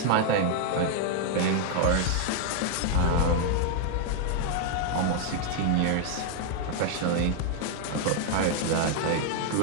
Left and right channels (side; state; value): both; different; correlation 0.00